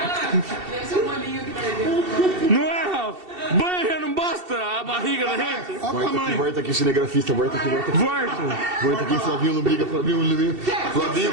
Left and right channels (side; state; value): left; late; 2.7 ms